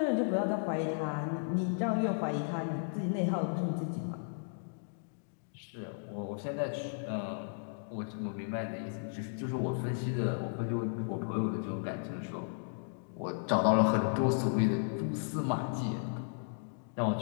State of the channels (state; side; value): silent; right; digital silence